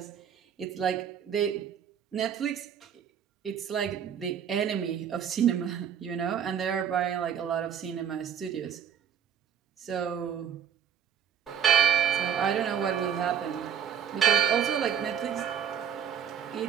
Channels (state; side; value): quieter; left; 8.4 dB